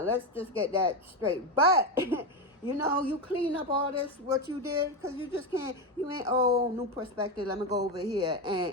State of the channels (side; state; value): both; normal; correlation 0.12